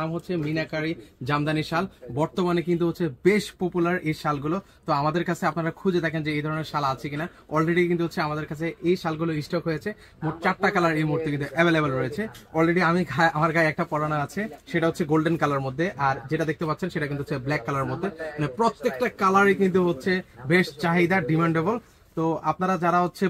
হচ্ছে মিনাকারি জামদানি শাল। বর্তমানে কিন্তু হচ্ছে বেশ পপুলার এই শালগুলো। তো আমাদের কাছে আপনারা খুঁজে দেখেন যে এই ধরনের শাল আছে কিনা। অলরেডি কিন্তু হচ্ছে আমাদের কাছে এই শালগুলো স্টক হয়েছে। মোট 4টা কালার এই মুহূর্তে কিন্তু অ্যাভেলেবেল রয়েছে। অলরেডি আমার গায়ে একটা পরানো আছে, সেটা হচ্ছে গোল্ডেন কালার মধ্যে, আর যেটা দেখতে পাচ্ছেন সেটা কিন্তু হচ্ছে ব্ল্যাক কালার মধ্যে। মানে প্রত্যেকটা কালারই কিন্তু হচ্ছে বেশ চাহিদা, ডিমান্ডেবল। তো আপনারা যারা হচ্ছে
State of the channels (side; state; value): both; identical; correlation 1.00